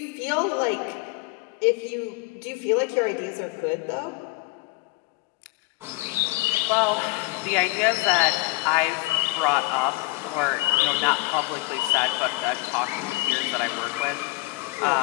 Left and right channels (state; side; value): quieter; right; 23.2 dB